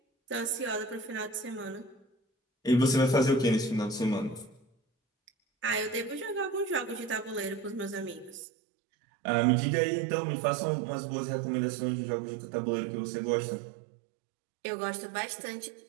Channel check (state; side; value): drops out; left; at 8.5 s